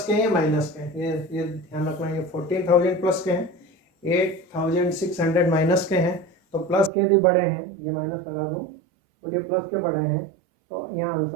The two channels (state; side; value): drops out; left; at 6.9 s